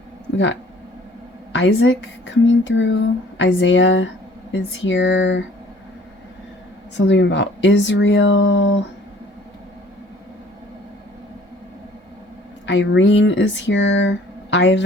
We got Isaac coming through. Isaiah is here. Something about Israel. Irene is here.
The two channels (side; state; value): both; normal; correlation 0.54